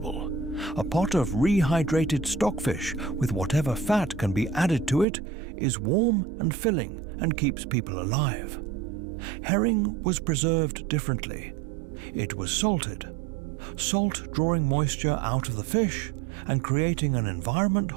a pot of rehydrated stockfish with whatever fat can be added to it is warm and filling and keeps people alive. Herring was preserved differently. It was salted. Salt drawing moisture out of the fish and creating an environment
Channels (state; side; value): drops out; left; at 5.1 s